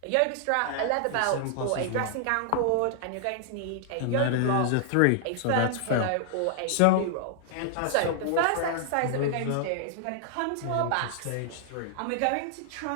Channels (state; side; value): different; both; correlation 0.00